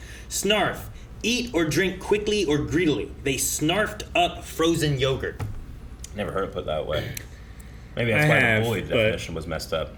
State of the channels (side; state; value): both; identical; correlation 1.00